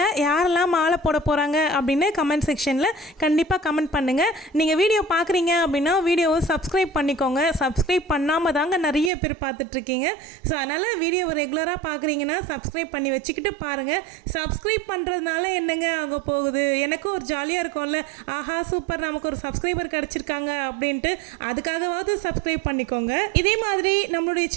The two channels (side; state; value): left; drops out; at 9.1 s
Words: யாரெல்லாம் மாலை போட போகிறாங்க அப்படின்னு கமெண்ட் செக்ஷனில் கண்டிப்பாக கமெண்ட் பண்ணுங்கள். நீங்கள் வீடியோ பார்க்குறீங்க அப்படின்னா வீடியோவை சப்ஸ்கிரைப் பண்ணிக்கோங்க. சப்ஸ்கிரைப் பண்ணாமல் தாங்க நிறைய பேர் பார்த்துட்ருக்கீங்க. ஸோ அதனால் வீடியோவை ரெகுலராக பார்க்குறீங்கன்னா சப்ஸ்கிரைப் பண்ணி வச்சுக்கிட்டு பாருங்கள். சப்ஸ்கிரைப் பண்ணுறதுனால என்னங்க ஆக போகுது? எனக்கும் ஒரு ஜாலியாக இருக்கும்ல, ஆஹா சூப்பர் நமக்கு ஒரு சப்ஸ்கிரைபர் கிடச்சிருக்காங்க அப்படின்ட்டு. அதுக்காகவாவது சப்ஸ்கிரைப் பண்ணிக்கோங்க. இதே மாதிரி நம்மளுடைய